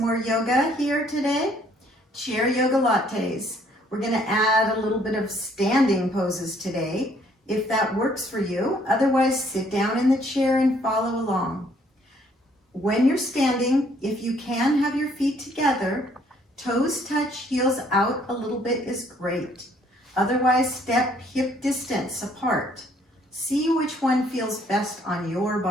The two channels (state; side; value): normal; both; correlation 0.64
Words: yoga here today. Chair Yogalates. We're going to add a little bit of standing poses today, if that works for you. Otherwise, sit down in the chair and follow along. When you're standing, if you can have your feet together, toes touch, heels out a little bit is great. Otherwise, step hip distance apart. See which one feels best on your